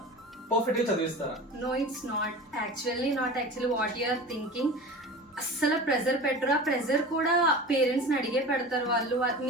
పర్ఫెక్ట్ గా చదివిస్తారా? No, it's not. Not actually what you are thinking. అస్సలు ప్రెజర్ పెట్టరు. ఆ ప్రెజర్ కూడా పేరెంట్స్ ని అడిగే పెడతారు. వాళ్ళు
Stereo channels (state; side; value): normal; both; correlation 0.34